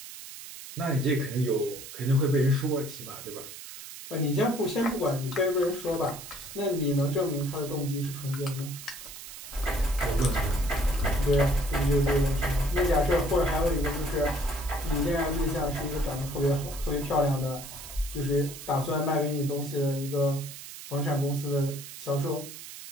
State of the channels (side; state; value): right; noise; hiss, 13 dB below the sound